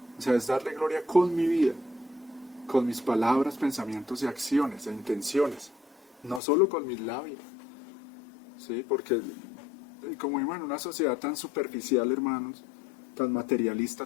O sea, es darle gloria con mi vida, con mis palabras, pensamientos y acciones e intenciones, no solo con mis labios, ¿sí? Porque como vivimos en una sociedad tan superficial, hermanos, tan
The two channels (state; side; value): drops out; right; at 6.4 s